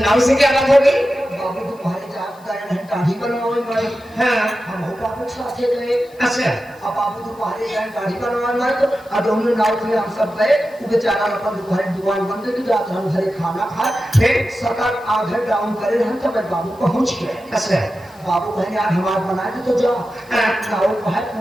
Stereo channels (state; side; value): noise; left; hiss, 28 dB below the sound